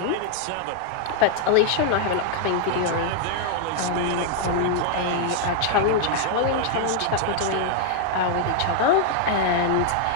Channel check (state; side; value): different; both; correlation 0.00